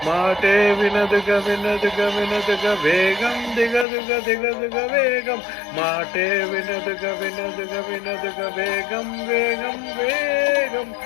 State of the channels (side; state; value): right; drops out; at 3.9 s